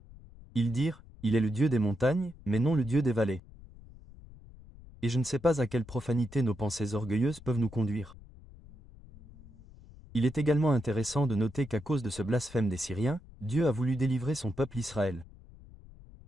Ils dirent, il est le Dieu des montagnes, mais non le Dieu des vallées. Et je ne sais pas à quelle profanité nos pensées orgueilleuses peuvent nous conduire. Il est également intéressant de noter qu'à cause de ce blasphème des Syriens, Dieu a voulu délivrer son peuple Israël.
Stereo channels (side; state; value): left; noise; rumble, 20 dB below the sound